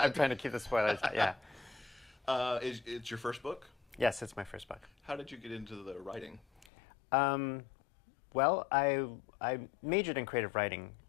trying to keep the spoilers. Yeah. It's your first book? Yes, it's my first book. How did you get into the writing? Well, I majored in creative writing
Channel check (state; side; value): drops out; right; at 6.7 s